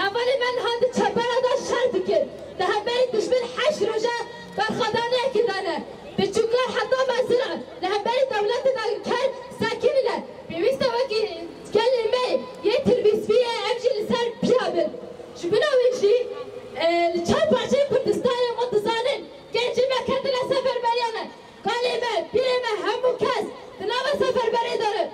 المين هاد شبارة دا شر دكن ده همبري دشمن حش رجا برخدانه كدانه بتشكر حتى مزرعة لهمبري دولة داقر كان ساكنة بيست وقي كلمة يتربيس فيها أمشي لسان بيابل شبنا ويجي الشعب عشان كردستان وانتصارن كان جمع كتلا سفر بريانا كلمة بيرمة همو كاس تناوى سفر بريدارة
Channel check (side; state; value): both; identical; correlation 1.00